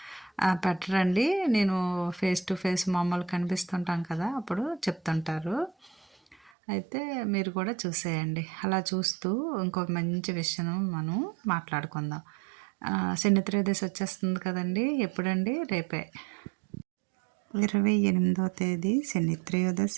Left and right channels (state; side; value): drops out; left; at 6.5 s